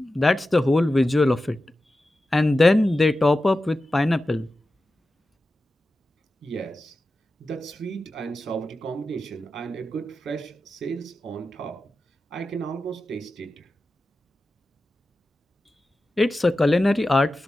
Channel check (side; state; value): both; normal; correlation 0.93